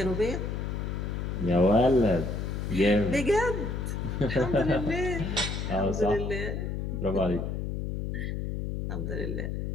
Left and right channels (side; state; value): left; noise; hum, 3 dB below the sound